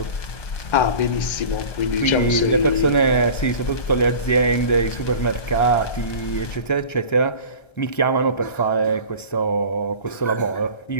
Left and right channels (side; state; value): right; late; 1.3 ms